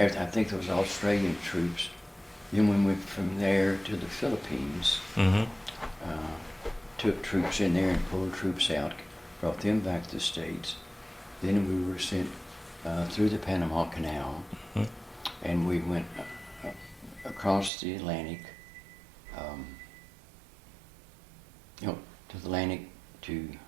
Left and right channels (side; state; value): left; drops out; at 17.7 s